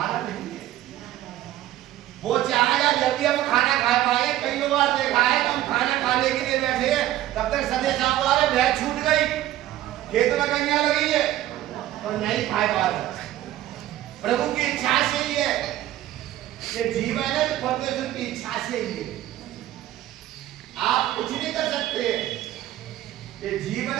नहीं है। वो चाहेगा जब भी हम खाना खा पाए। कई बार देखा है हम खाना खाने के लिए बैठे तब तक सदे साहब आ रहे, भैंस छूट गई, खेत में कन्या लगी है और नहीं खा पा रहे। प्रभु की इच्छा से ही है, ये जीवन है परमेश्वर की इच्छा से ही है, आप कुछ नहीं कर सकते। ये जीवन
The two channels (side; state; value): left; quieter; 14.0 dB